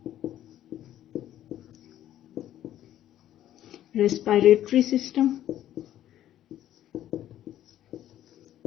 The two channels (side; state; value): right; quieter; 12.2 dB